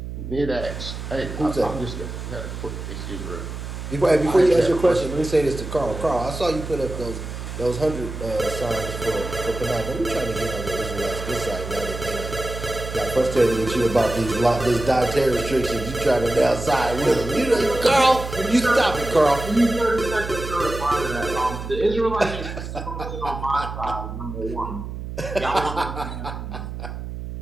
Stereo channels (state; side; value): noise; right; hum, 8 dB below the sound